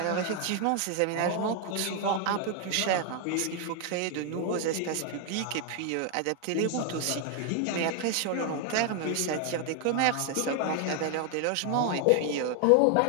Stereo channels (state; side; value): different; both; correlation 0.00